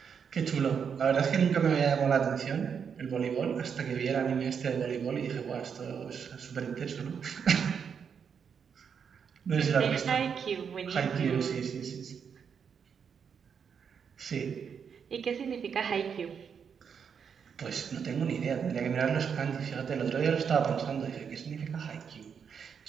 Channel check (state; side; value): quieter; left; 6.9 dB